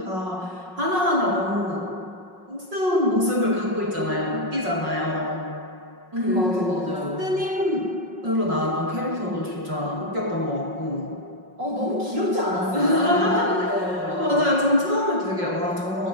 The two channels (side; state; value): left; late; 5.5 ms